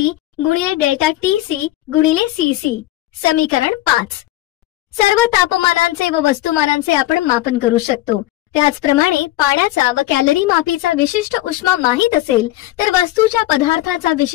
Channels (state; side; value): quieter; right; 16.0 dB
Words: गुणिले डेल्टा TC गुणिले CC. समीकरण 5. सर्व तापमानांचे व वस्तुमानांचे आपण मापन करू शकतो. त्याचप्रमाणे पाण्याचा व कॅलरी मापीचा विशिष्ट उष्मा माहित असेल तर वस्तूच्या पदार्थाचा